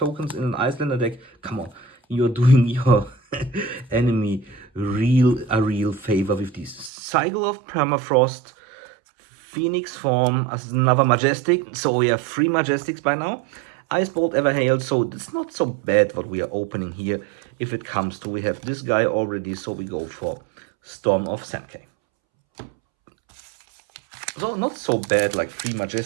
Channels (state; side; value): drops out; left; at 6.9 s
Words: in an Icelander deck. Come on, you're doing your enemy a real favor with this. Cycle of Permafrost, Phoenix form as another Majestic. So we have 3 Majestics by now. Ice Bolt Everhail, so it's not so bad what we are opening here. If it comes to, we have this guy already, so we go for Storm of Sankey. So not so bad, like 3